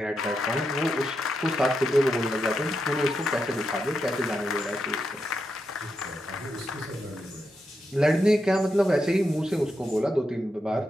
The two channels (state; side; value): normal; both; correlation 0.85